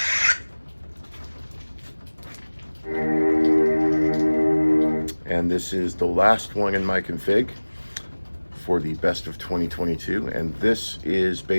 And this is the last one in my config for the best of 2022, and this is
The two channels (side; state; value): both; inverted; correlation -1.00